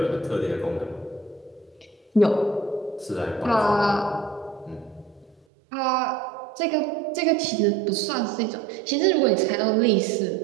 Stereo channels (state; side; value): drops out; left; at 5.4 s